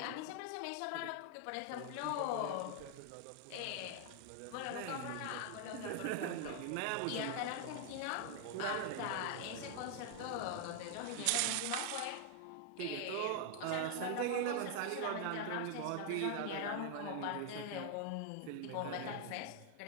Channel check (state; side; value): different; both; correlation 0.00